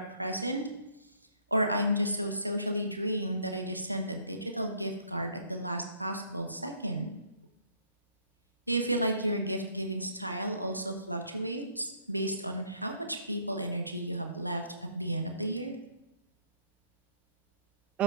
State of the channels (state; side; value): inverted; both; correlation -0.62